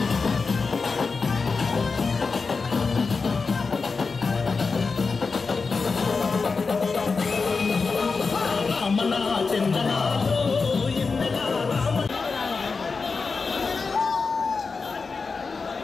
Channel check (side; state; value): right; quieter; 4.6 dB